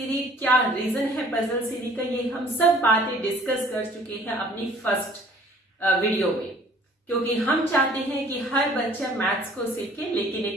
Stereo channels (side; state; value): both; normal; correlation 0.54